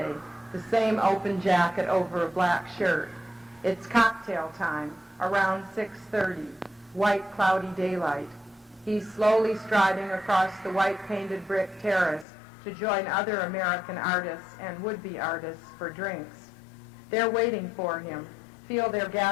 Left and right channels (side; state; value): right; drops out; at 12.2 s